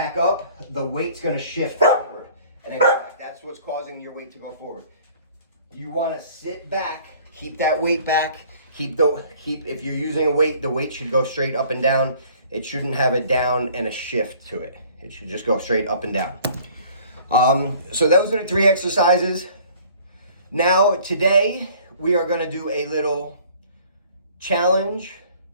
up, the weight's going to shift forward and then go back. That's what's causing your weight to go forward. You want to sit back, keep that weight back. If you're using a weight, the weight should go straight up and down. It shouldn't have a down and a shift to it. It should just go straight up and down. So those are the 3 exercises. Now today we are going to do a little challenge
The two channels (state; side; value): inverted; both; correlation -0.53